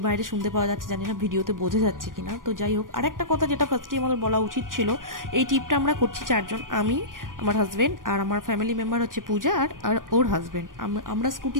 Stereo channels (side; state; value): left; late; 0.90 ms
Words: বাইরে শুনতে পাওয়া যাচ্ছে, জানি না ভিডিওতে বোঝা যাচ্ছে কিনা। তো যাই হোক, আরেকটা কথা যেটা ফার্স্টে আমাদের বলা উচিত ছিল, এই ট্রিপটা আমরা করছি 4 জন, আমি, আমার হাজব্যান্ড, আর আমার ফ্যামিলি মেম্বার হচ্ছে পূজা আর ওর হাজব্যান্ড। আমরা